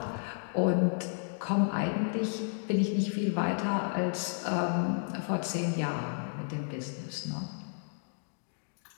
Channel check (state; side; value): silent; right; digital silence